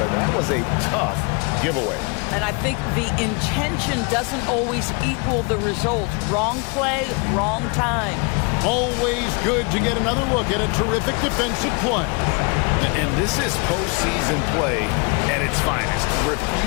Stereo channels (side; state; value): right; quieter; 32.3 dB